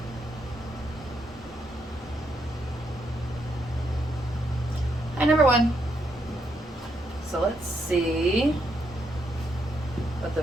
Hi, number one. So let's see what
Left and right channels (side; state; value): both; normal; correlation 0.78